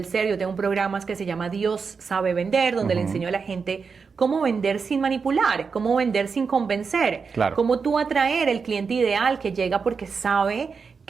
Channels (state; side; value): quieter; left; 5.4 dB